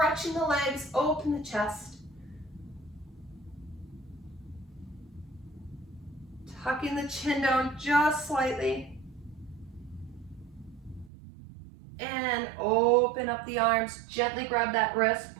the legs, open the chest. Tucking the chin down just slightly. And open up the arms, gently grab that wrist,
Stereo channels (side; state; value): left; drops out; at 11.1 s